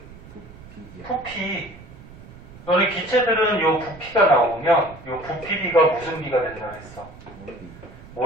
부피. 너네 기체들은 요 부피가 나오면 요 부피비가 무슨 비가 된다 그랬어?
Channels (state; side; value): noise; right; rumble, 18 dB below the sound